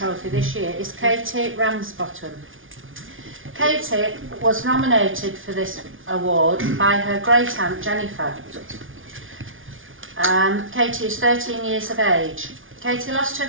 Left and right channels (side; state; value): left; late; 0.58 ms